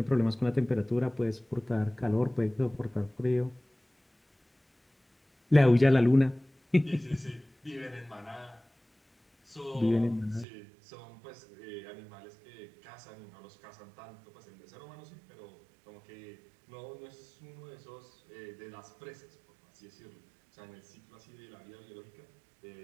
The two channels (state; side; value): drops out; left; at 10.5 s